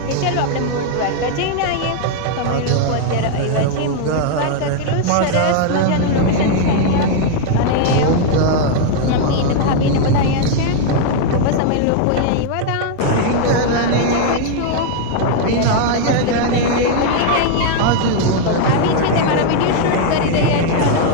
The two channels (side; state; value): both; different; correlation 0.00